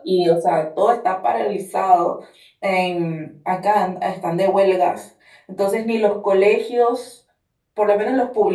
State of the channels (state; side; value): identical; both; correlation 1.00